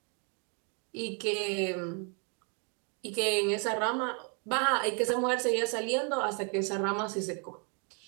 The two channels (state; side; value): quieter; left; 36.7 dB